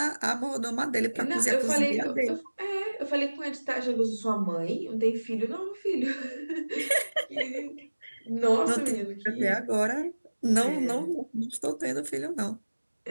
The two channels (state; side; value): inverted; both; correlation -1.00